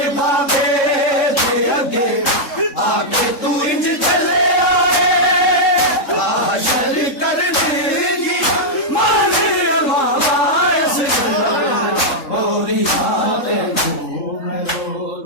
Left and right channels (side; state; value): right; late; 3.7 ms